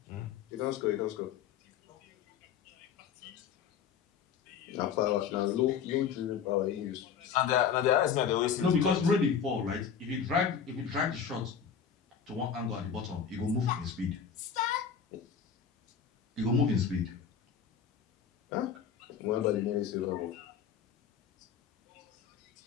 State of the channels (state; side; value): quieter; right; 7.3 dB